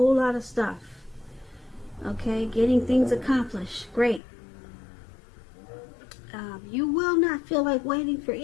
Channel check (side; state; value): right; drops out; at 4.2 s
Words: lot of stuff. Okay? Getting things accomplished. Great. You will not feel like waiting for